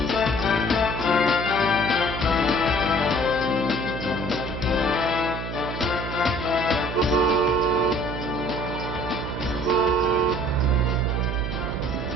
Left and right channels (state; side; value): noise; right; hum, 6 dB below the sound